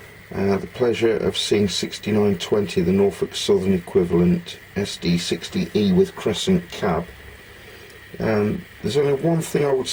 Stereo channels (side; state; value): both; identical; correlation 1.00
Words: the pleasure of seeing 6920, the Norfolk Southern equivalent, SD60E with crescent cab. There's only one thing I would